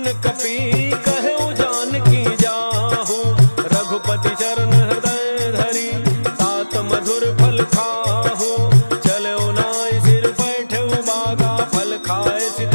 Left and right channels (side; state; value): both; inverted; correlation -1.00